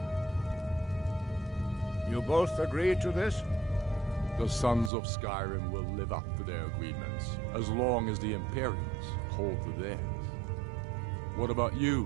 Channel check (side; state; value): left; drops out; at 4.9 s